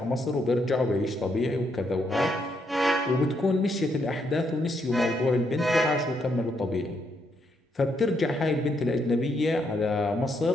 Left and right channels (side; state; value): both; normal; correlation 0.76